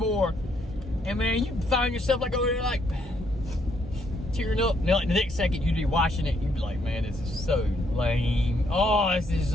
And man, you find yourself like over there, like tearing up. And like the next second, you'd be watching it, and you'd be like, man, this is so lame. Oh, this is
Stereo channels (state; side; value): normal; both; correlation 0.72